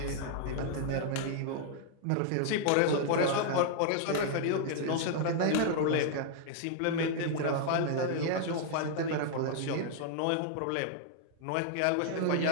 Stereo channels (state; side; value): different; both; correlation -0.01